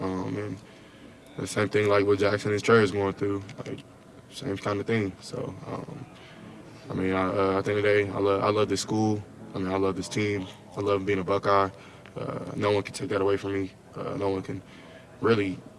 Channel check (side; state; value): both; identical; correlation 1.00